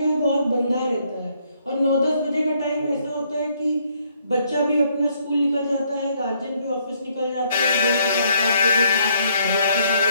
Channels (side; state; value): both; inverted; correlation -0.70